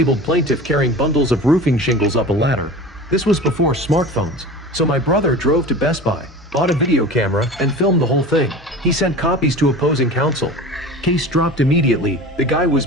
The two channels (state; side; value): normal; both; correlation 0.35